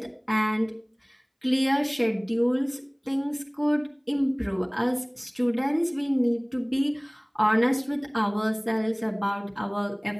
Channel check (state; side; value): identical; both; correlation 1.00